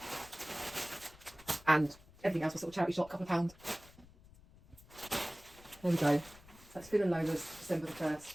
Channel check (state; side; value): noise; left; rumble, 23 dB below the sound